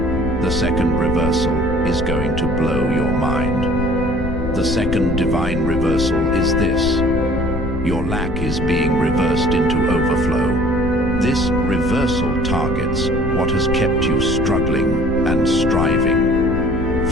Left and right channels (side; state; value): left; noise; rumble, 5 dB below the sound